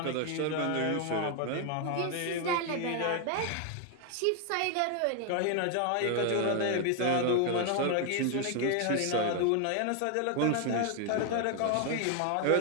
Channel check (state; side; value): different; both; correlation 0.00